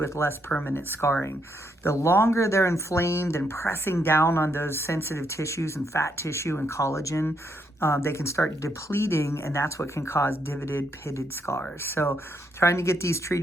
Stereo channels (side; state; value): both; normal; correlation 0.76